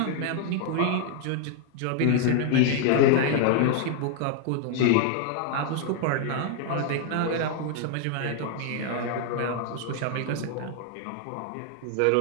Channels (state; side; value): different; both; correlation 0.00